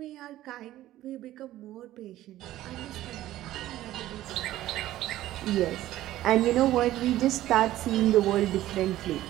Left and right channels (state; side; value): quieter; left; 14.5 dB